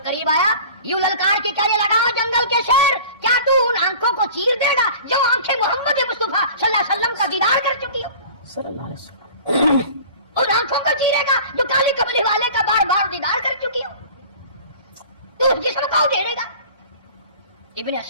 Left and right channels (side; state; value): both; inverted; correlation -0.42